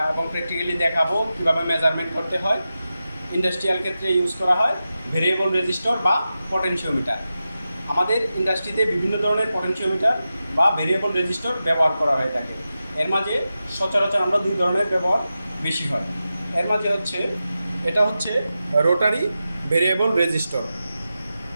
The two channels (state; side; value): inverted; both; correlation -0.92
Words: এবং প্র্যাকটিক্যালি দেখাবো কীভাবে মেজারমেন্ট করতে হয়। ইন্ডাস্ট্রিয়াল ক্ষেত্রে ইউজ করা হয় ভেরিয়েবল রেজিস্টর বা পটেনশিওমিটার। আমাদের ইন্ডাস্ট্রিতে বিভিন্ন ধরনের পটেনশিওমিটার বা ভেরিয়েবল রেজিস্টর ব্যবহার করা হয়ে থাকে। এর মাঝে সচরাচর আমরা দুই ধরনের ব্যবহার বেশি হয়। এর মাঝে এটা হচ্ছে রোটারি ভেরিয়েবল রেজিস্টর,